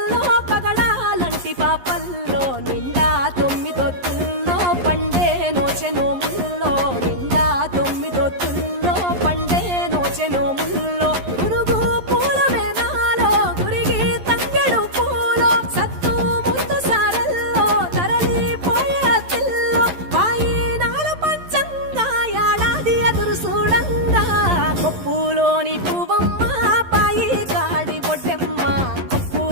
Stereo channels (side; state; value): left; late; 11 ms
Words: పగడాలంటి పాపల్లో నిండా 9 ఒత్తుల్లో పండే నోచె నోముల్లో నిండా 9 ఒత్తుల్లో పండే నోచె నోముల్లో పురుగు పూల మేనాలో గురిగి తంగెడు పూలో సత్తు ముందు సారల్లో తరలిపోయే తిల్లో వాయినాల పంచంగా ఏడాది ఎదురు చూడంగా కొప్పులోని పువ్వమ్మ పాయి కాడి బొడ్డెమ్మ